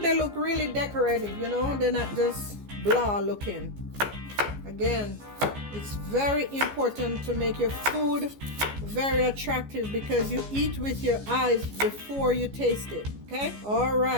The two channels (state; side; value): late; left; 14 ms